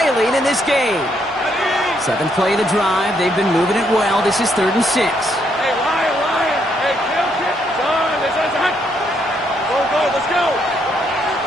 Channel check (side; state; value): both; normal; correlation 0.74